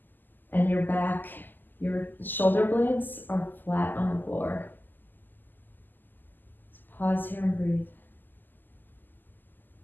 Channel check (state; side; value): late; right; 0.089 ms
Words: and your back, your shoulder blades are flat on the floor. So pause here and breathe.